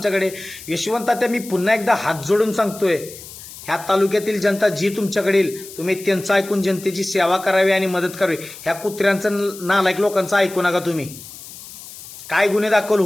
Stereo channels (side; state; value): left; noise; hiss, 15 dB below the sound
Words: यशवंत तात्या, मी पुन्हा एकदा हात जोडून सांगतोय, ह्या तालुक्यातील जनता जी तुमच्याकडे येईल, तुम्ही त्यांचं ऐकून जनतेची सेवा करावी आणि मदत करावी. ह्या कुत्र्यांचं नालायक लोकांचं ऐकू नका. तुम्ही काय गुन्हे दाखल